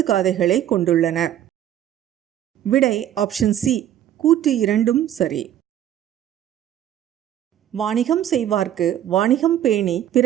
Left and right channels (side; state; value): left; quieter; 11.4 dB